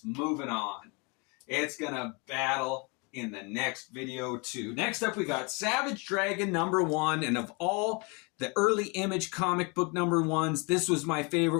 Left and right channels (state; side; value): quieter; right; 30.4 dB